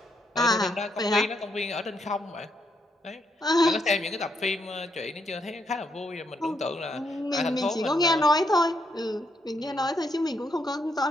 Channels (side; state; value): both; normal; correlation 0.77